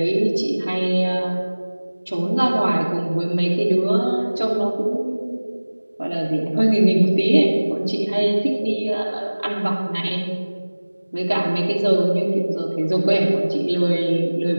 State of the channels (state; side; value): inverted; both; correlation -1.00